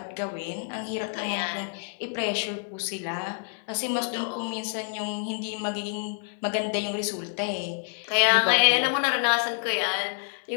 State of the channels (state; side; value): silent; right; 57 dB below the other